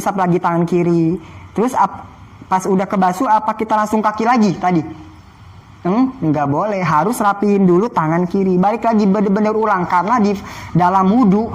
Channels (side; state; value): both; identical; correlation 1.00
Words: lagi tangan kiri. Terus pas udah kebasuh apa kita langsung kaki lagi tadi? Nggak boleh, harus rapiin dulu tangan kiri, balik lagi bener-bener ulang, karena di dalam wudu